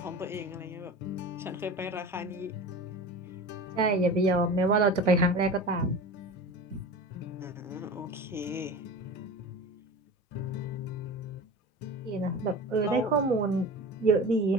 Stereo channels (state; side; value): normal; both; correlation 0.33